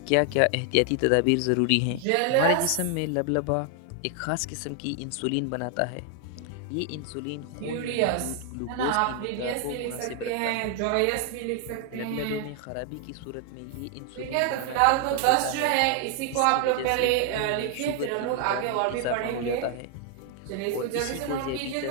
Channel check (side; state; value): both; different; correlation 0.00